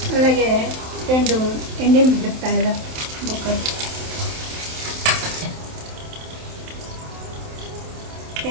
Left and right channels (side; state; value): left; late; 27 ms